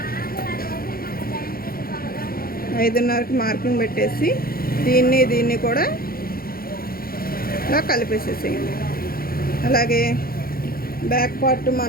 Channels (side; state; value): right; late; 0.43 ms